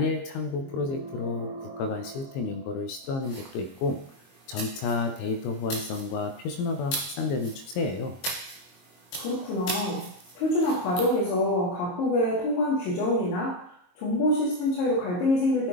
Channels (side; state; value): right; late; 22 ms